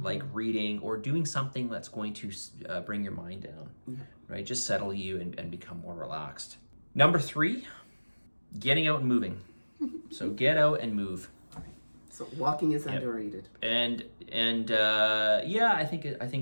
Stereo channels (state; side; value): inverted; both; correlation -1.00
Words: like reading or doing something that's going to bring your mind down, right? Just settle you and become more relaxed. Number 3, getting out and moving. So get out and move. So walking is underrated. And yeah, I